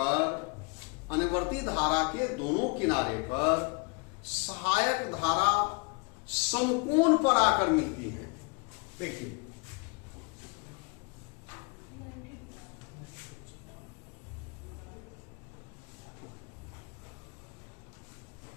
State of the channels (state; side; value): quieter; right; 32.1 dB